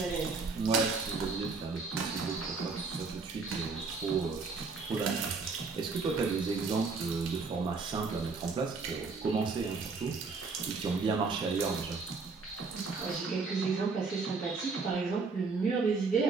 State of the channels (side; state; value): left; quieter; 4.4 dB